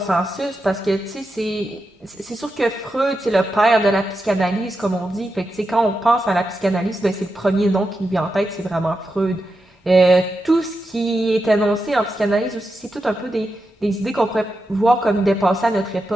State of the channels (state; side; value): normal; both; correlation 0.88